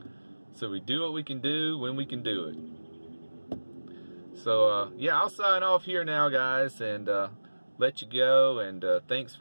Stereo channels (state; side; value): inverted; both; correlation -1.00